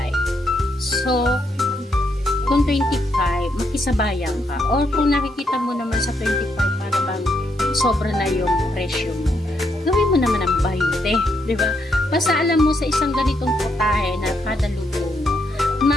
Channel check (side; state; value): both; normal; correlation 0.77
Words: So, kung 25, makisabayan ka. Or kung nakikita mo naman sa 25, para bang sobra na yung presyo mo, gawin mo naman ang 20, di ba? Basta alam mo sa isang ganitong putahe na kada luto mo,